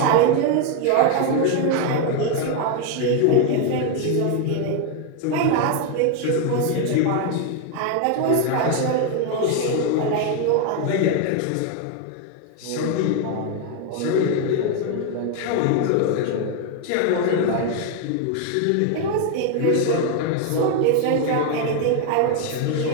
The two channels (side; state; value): both; different; correlation 0.01